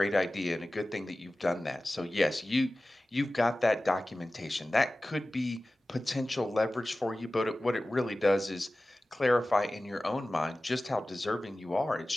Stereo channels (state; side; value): normal; both; correlation 0.96